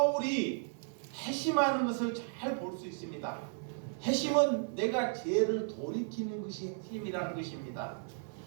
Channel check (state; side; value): silent; left; 55 dB below the other